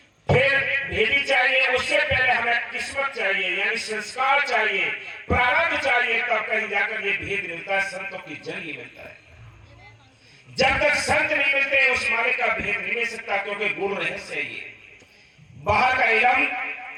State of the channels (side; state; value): both; identical; correlation 1.00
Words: फिर भेदी चाहिए, उससे पहले हमें किस्मत चाहिए, यानी संस्कार चाहिए, प्रारब्ध चाहिए, तब कहीं जाकर ये भेद मिलता है। संतों की जरिए मिलता है। जब तक संत नहीं मिलते, उस मालिक का भेद नहीं मिल सकता, क्योंकि गुरु रहस्य है ये। बाहर का इलम